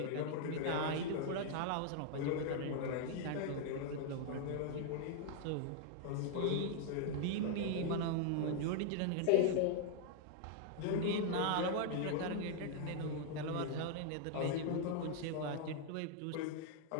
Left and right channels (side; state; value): both; different; correlation 0.00